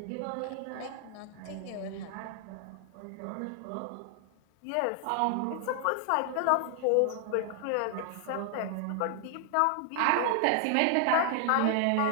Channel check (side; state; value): both; different; correlation 0.00